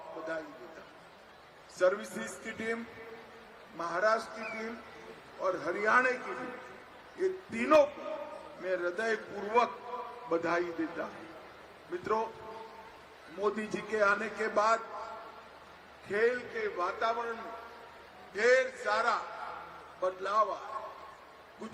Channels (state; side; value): identical; both; correlation 1.00